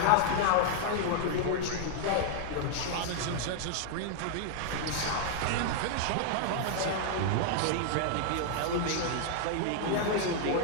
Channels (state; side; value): different; both; correlation -0.01